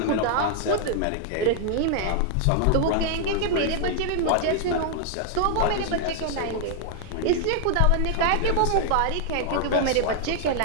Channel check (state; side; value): different; both; correlation 0.00